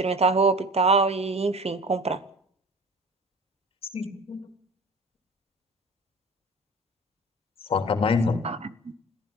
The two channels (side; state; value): both; normal; correlation 0.40